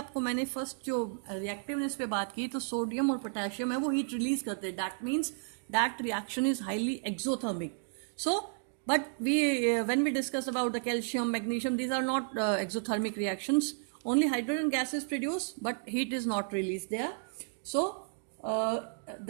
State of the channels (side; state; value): left; silent; digital silence